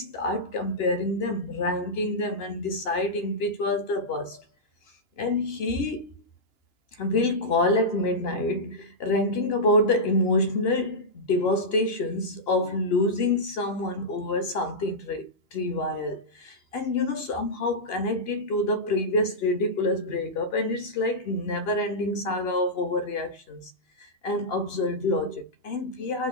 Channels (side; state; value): right; late; 2.9 ms